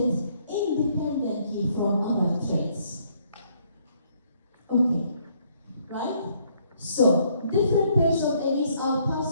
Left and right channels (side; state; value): both; inverted; correlation -0.68